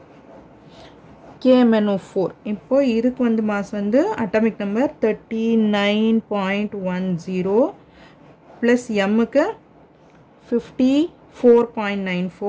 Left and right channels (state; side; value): identical; both; correlation 1.00